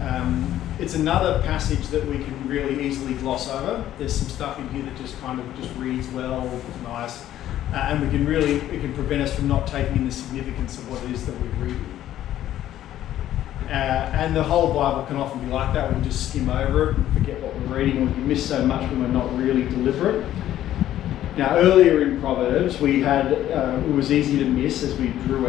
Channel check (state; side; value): quieter; right; 12.5 dB